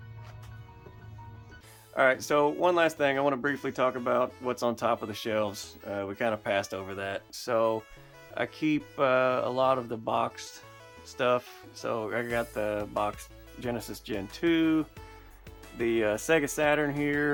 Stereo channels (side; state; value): both; identical; correlation 1.00